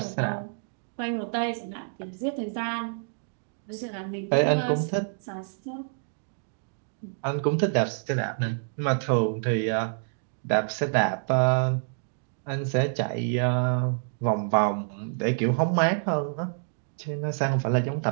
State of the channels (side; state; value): left; silent; digital silence